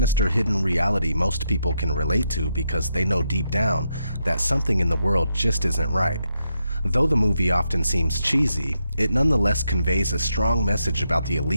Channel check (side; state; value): both; inverted; correlation -0.82